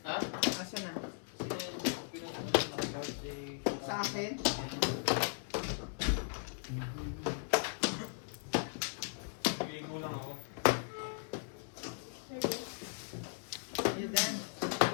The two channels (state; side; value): silent; right; digital silence